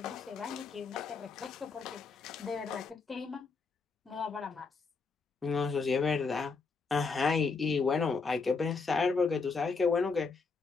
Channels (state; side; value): quieter; right; 4.6 dB